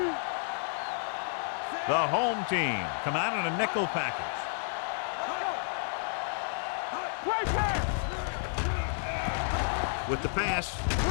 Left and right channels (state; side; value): silent; right; 57 dB below the other